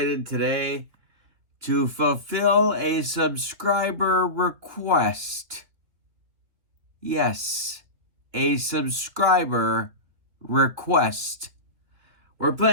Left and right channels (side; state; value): left; late; 3.1 ms